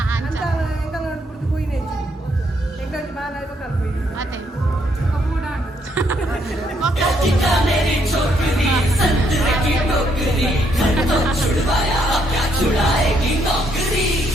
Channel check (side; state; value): both; normal; correlation 0.73